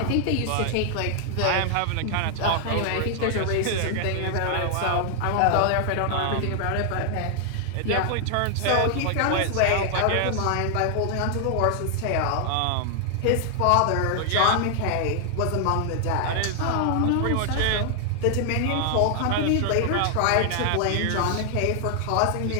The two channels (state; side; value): different; both; correlation 0.00